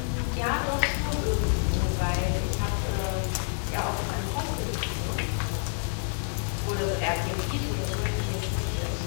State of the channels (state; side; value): silent; right; 59 dB below the other